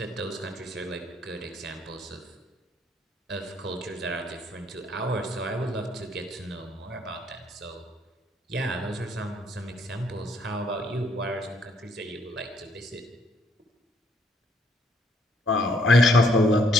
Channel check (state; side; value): normal; both; correlation 0.68